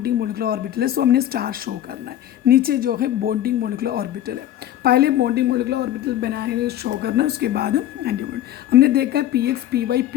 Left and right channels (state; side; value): quieter; right; 12.1 dB